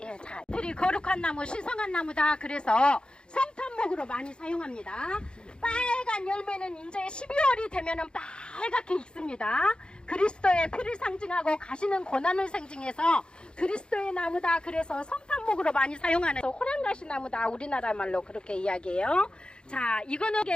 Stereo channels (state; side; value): late; right; 0.051 ms